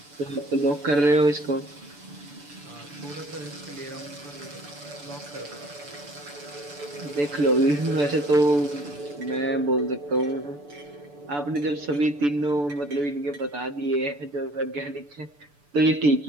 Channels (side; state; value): left; late; 6.9 ms